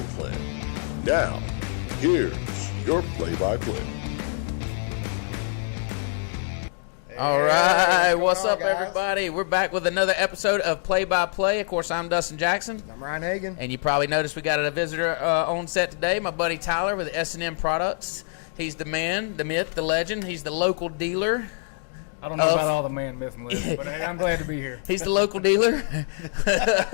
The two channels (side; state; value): right; silent; digital silence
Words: plan. Now, here's your play-by-play. All right, what's up, everybody? We're back with another episode of Play-by-Play. Of course, I'm Dustin Jackson. I'm Ryan Hagan. And you probably noticed we got a visitor on set today, my buddy Tyler with S&N Products. He's the man, the myth, the legend. He's the local dealer. I don't know about all the man, myth, and legend, but hey, I'm glad to be here. He's the local dealer